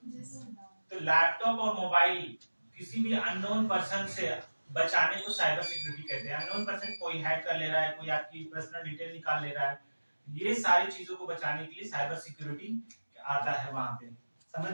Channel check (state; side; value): inverted; both; correlation -1.00